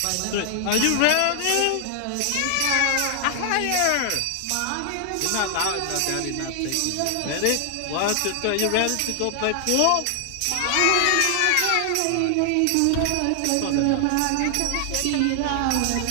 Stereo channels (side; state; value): both; different; correlation 0.00